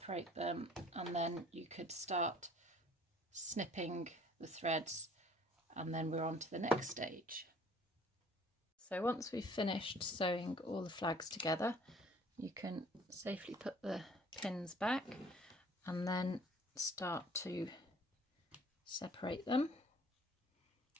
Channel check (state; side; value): normal; both; correlation 0.54